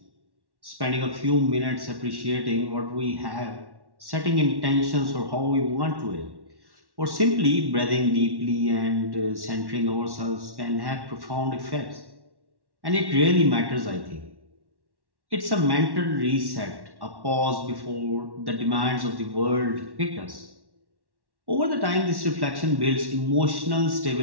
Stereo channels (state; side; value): late; left; 1.1 ms